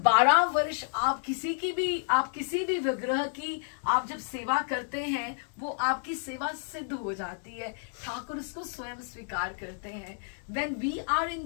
वर्ष आप किसी भी विग्रह की आप जब सेवा करते हैं वो आपकी सेवा सिद्ध हो जाती है, ठाकुर इसको स्वयं स्वीकार करते हैं। When we are in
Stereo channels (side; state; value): right; silent; digital silence